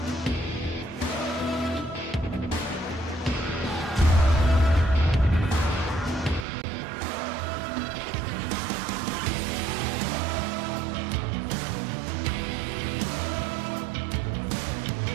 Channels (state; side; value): drops out; left; at 6.5 s